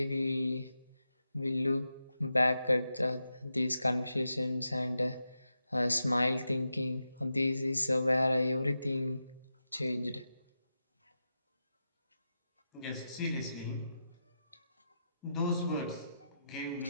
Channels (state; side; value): inverted; both; correlation -0.89